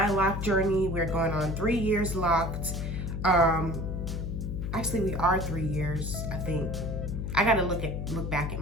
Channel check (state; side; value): noise; left; hum, 3 dB below the sound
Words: lock journey. We're going on 3 years locked. Actually, we are 3 years, I think. I gotta look back at